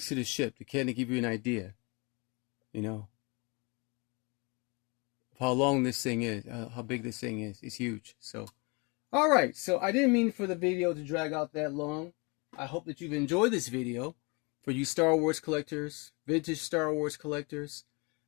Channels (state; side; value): quieter; right; 30.1 dB